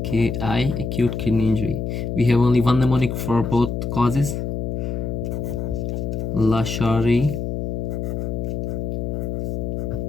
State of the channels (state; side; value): noise; left; hum, 2 dB below the sound